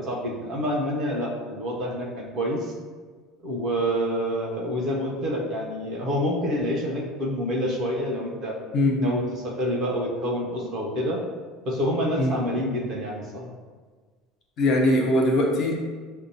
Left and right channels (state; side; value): normal; both; correlation 0.37